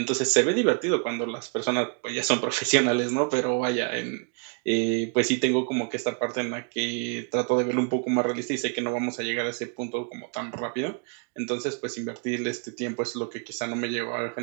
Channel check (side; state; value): left; quieter; 37.5 dB